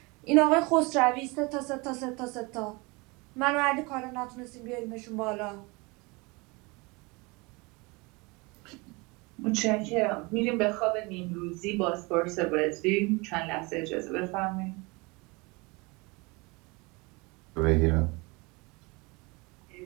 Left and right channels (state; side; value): quieter; left; 26.4 dB